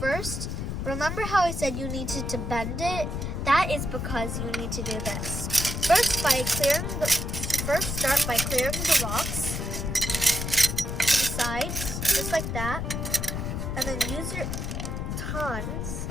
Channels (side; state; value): left; noise; rumble, 3 dB below the sound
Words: remember how I said you needed to bend it? That is because you need to do this. First, start by clearing the rocks to the sides, just like that, and then use your tongs